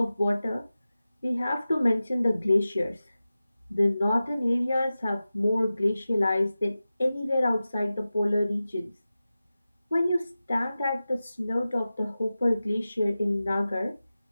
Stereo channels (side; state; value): both; inverted; correlation -0.95